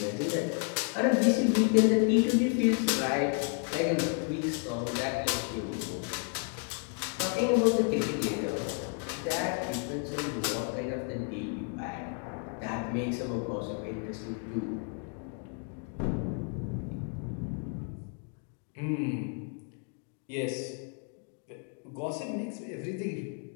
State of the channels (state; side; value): quieter; right; 38.3 dB